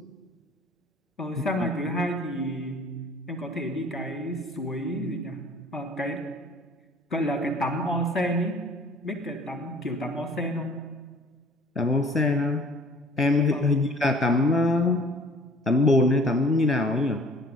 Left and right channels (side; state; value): both; normal; correlation 0.52